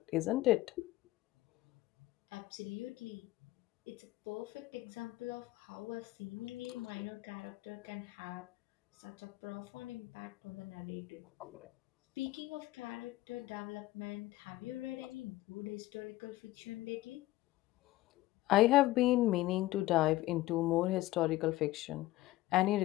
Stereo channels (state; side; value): quieter; right; 17.3 dB